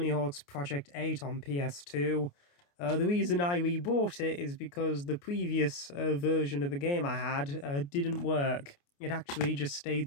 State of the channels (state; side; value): late; right; 29 ms